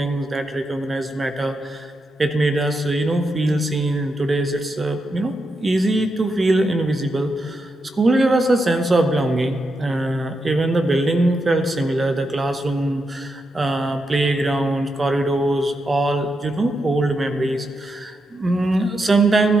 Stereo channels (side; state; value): both; normal; correlation 0.85